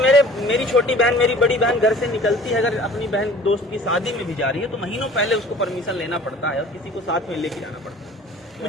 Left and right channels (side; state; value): both; normal; correlation 0.47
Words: छोटी बहन, मेरी बड़ी बहन घर से निकलती है, अगर अपनी बहन दोस्त की शादी में भी जा रही है तो महीनों पहले उसको परमिशन लेना पड़ता है और किसी को साथ में लेके जाना पड़ता है।